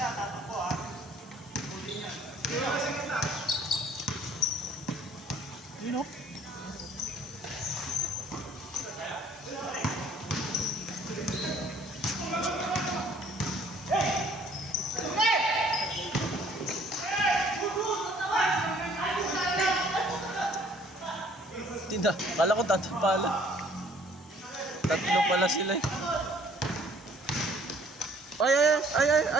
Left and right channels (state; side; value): normal; both; correlation 0.58